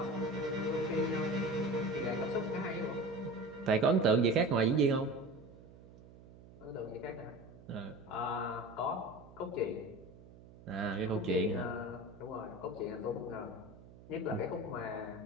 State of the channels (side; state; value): right; noise; hum, 20 dB below the sound